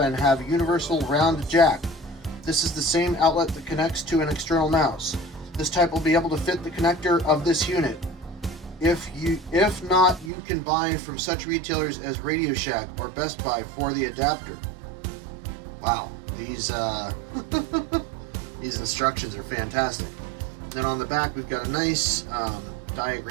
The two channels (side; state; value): left; drops out; at 10.3 s